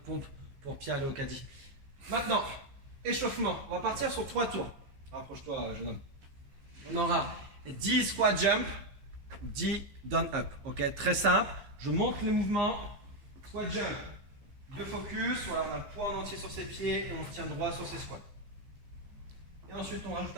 pour Pierre aller au caddie. Maintenant, échauffement. On va partir sur 3 tours. Rapproche-toi, jeune homme. On aura 10 squat jump, 10 down up. Ok, très simple. Je montre les mouvements. Squat jump, 2 focus. Voilà, on a le poids en entier sur ses pieds et on se tient droit sur ses squats. Et ensuite, on rajoute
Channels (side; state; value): left; late; 15 ms